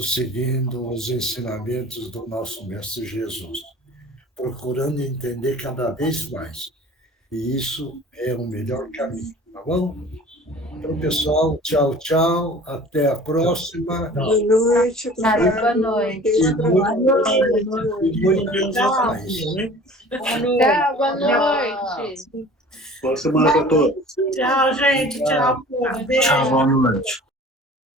seguindo os ensinamentos do nosso Mestre Jesus, procurando entender cada vez mais E isso é o melhor caminho, tá bom? Então, pessoal, tchau, tchau. Até a próxima. Boa noite. Boa noite. Tchau, boa noite. Boa semana para todos. Tchau, gente. Tchau, povo. Beijo. Tchau, boa noite.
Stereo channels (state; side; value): normal; both; correlation 0.45